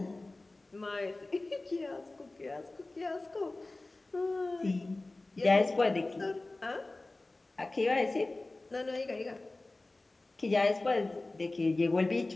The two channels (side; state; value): right; quieter; 3.0 dB